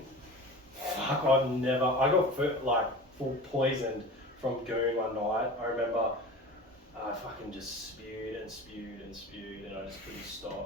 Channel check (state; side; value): normal; both; correlation 0.35